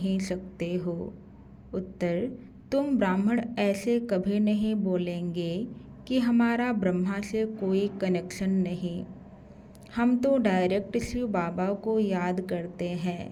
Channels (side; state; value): both; identical; correlation 1.00